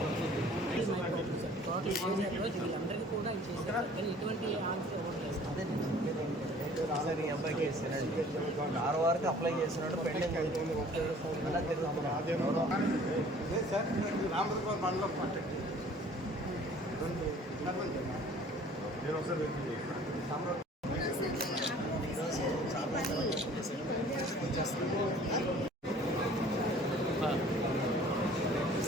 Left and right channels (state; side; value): normal; both; correlation 0.51